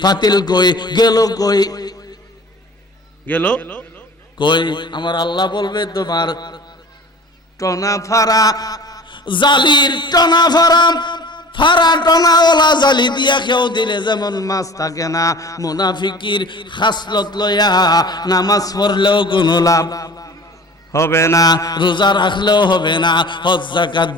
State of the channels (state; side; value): normal; both; correlation 0.43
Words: ফাতিল কই, গেল কই, গেল কই। আমার আল্লাহ বলবে তোমার টনা ফারা জালির টনা ফারা, ফারা টনা ওলা জালি দিয়া কেউ দিলে যেমন মাছ থাকে না, মুনাফিকির খাসলত লয়া নামাজ পড়লেও কোনো লাভ হবে না, রোজা রাখলেও হবে না, হজ যাকাত